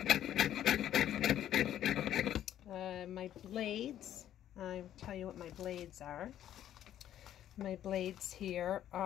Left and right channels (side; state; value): right; quieter; 11.4 dB